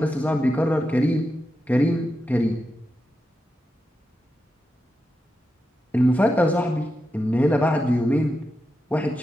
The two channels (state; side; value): normal; both; correlation 0.88